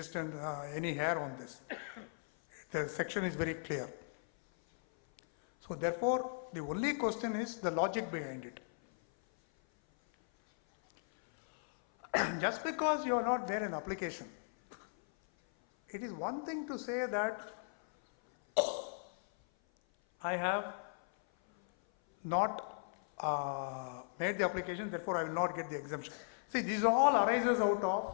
any hair on this. the section is very clear. So therefore, the only question is the logic behind it. Just because you are not there in application, it is one thing to say that I have not made the application, therefore I will not get the exemption. See, these all arises out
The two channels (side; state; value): right; silent; 53 dB below the other